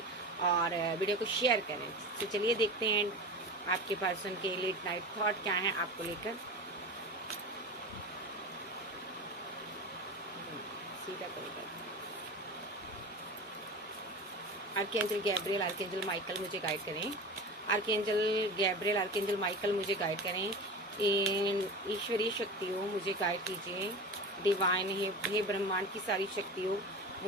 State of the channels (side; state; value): both; normal; correlation 0.30